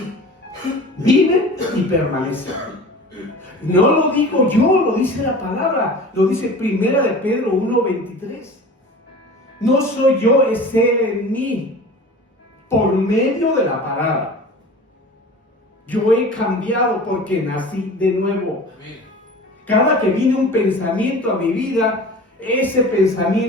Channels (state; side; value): normal; both; correlation 0.38